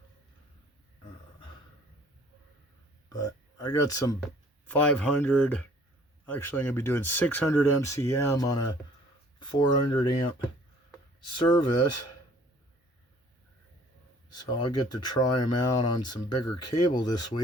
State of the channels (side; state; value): both; normal; correlation 0.55